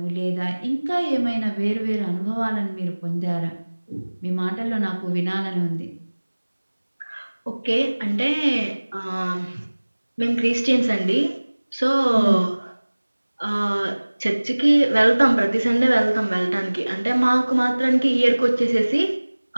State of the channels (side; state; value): both; inverted; correlation -1.00